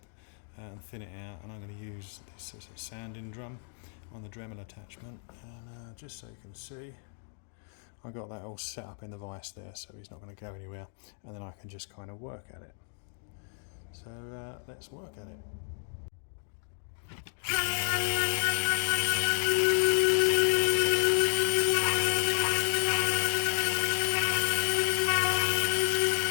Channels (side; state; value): right; silent; 57 dB below the other